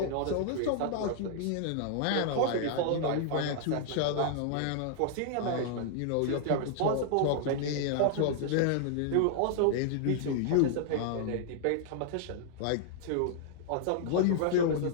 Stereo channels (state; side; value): different; both; correlation -0.01